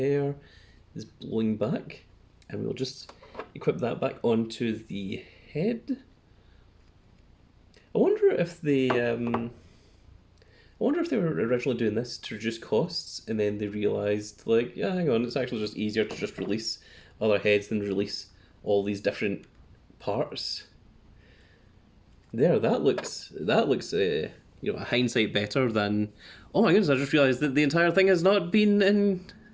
is blowing back, and we'll just equip that back onto the head. I wonder if they were originally doing this to reduce costs, and then they realised, like, yeah, hang on, it's actually just easier to just release other heads than release all these different parts. There, you know, hindsight better than. Oh my goodness! I just realised that the entire thing has not been in,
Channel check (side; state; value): both; identical; correlation 1.00